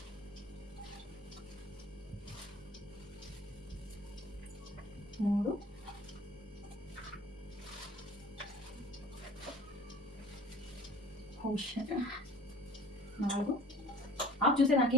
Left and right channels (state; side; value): normal; both; correlation 0.45